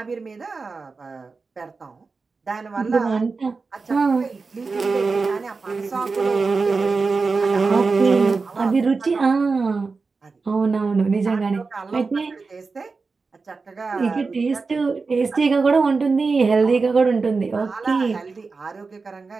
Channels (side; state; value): left; quieter; 4.3 dB